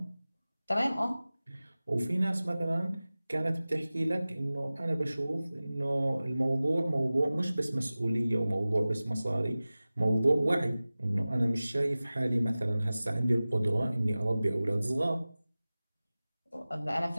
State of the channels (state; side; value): inverted; both; correlation -0.97